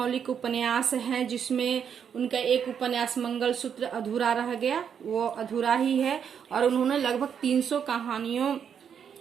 उपन्यास हैं जिसमें उनका एक उपन्यास मंगलसूत्र अधूरा रह गया, वो अधूरा ही है। और उन्होंने लगभग 300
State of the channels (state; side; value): quieter; left; 7.8 dB